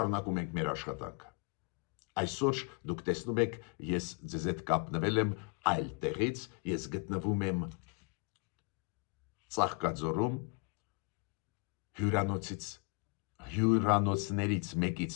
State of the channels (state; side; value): quieter; right; 30.4 dB